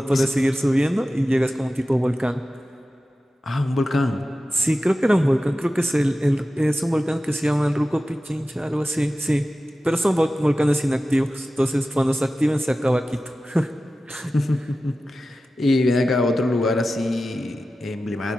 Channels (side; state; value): both; normal; correlation 0.94